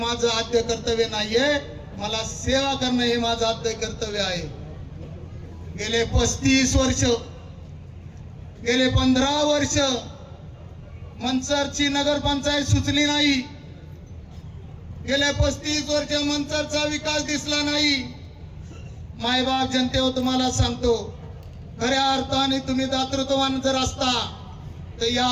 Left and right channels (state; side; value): identical; both; correlation 1.00